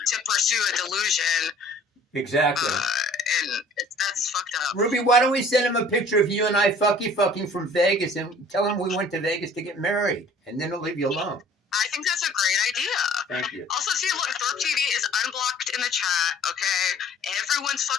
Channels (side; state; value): both; normal; correlation 0.51